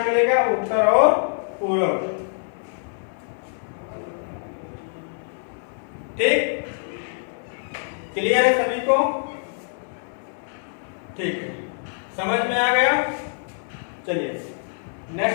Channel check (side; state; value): right; silent; 62 dB below the other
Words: मिलेगा, उत्तर और पूरब। ठीक, क्लियर है सभी को? ठीक है, समझ में आ गया? चलिए